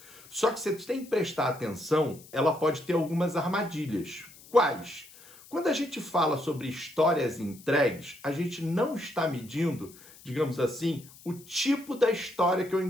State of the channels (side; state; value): left; noise; hiss, 22 dB below the sound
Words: Só que você tem que prestar atenção, ela pode ter algumas armadilhas. Quais? Quando a gente fala sobre histórias entregues, a gente não está medindo, digamos assim, o tipo da história que eu